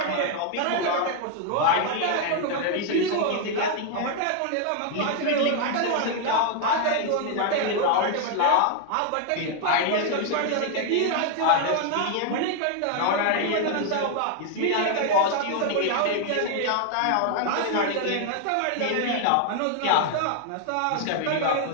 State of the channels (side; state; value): both; different; correlation 0.00